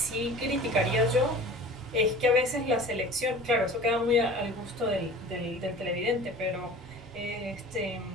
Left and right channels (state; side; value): normal; both; correlation 0.41